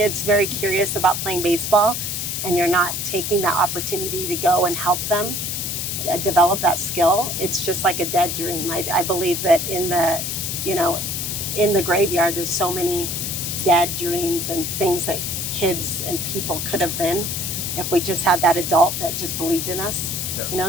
very curious about playing baseball and you're not taking that opportunity to go and help them develop that skill, it's just like a dead dream. I believe that in the graveyard, there's so many dead dreams and things that kids and people could have been if we just had that adult that just believed in us. Yeah.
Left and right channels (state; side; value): noise; left; hiss, 3 dB below the sound